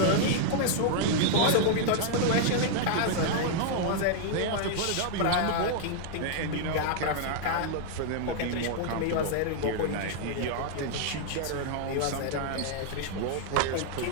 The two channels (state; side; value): different; both; correlation -0.01